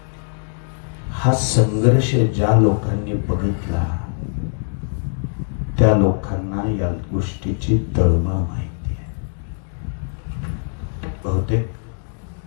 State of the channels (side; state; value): right; silent; 65 dB below the other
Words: हा संघर्ष ज्या लोकांनी बघितला त्या लोकांना या गोष्टीची तळमळ माहिती आहे. बहुतेक